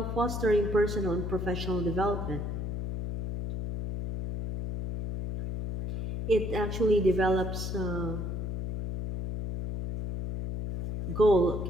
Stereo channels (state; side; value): noise; left; hum, 4 dB below the sound